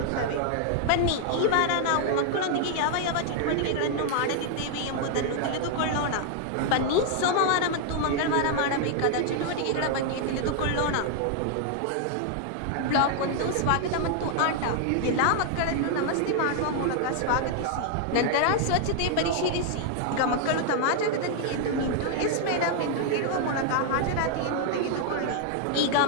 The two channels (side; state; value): both; different; correlation 0.00